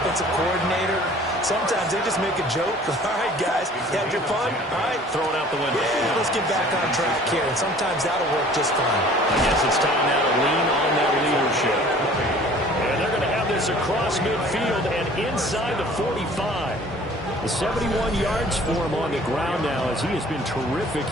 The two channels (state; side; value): normal; both; correlation 0.50